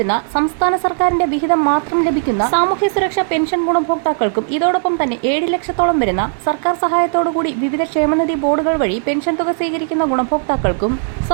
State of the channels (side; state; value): left; silent; 66 dB below the other